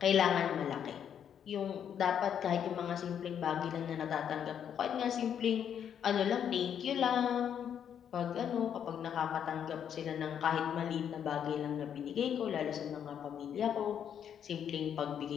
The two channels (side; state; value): right; quieter; 8.7 dB